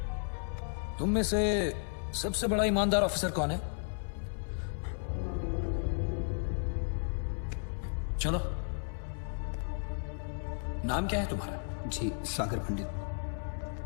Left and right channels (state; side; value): silent; right; 55 dB below the other